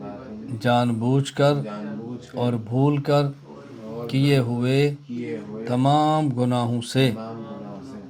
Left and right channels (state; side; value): identical; both; correlation 1.00